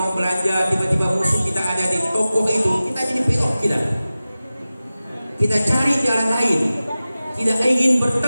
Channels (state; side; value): inverted; both; correlation -0.95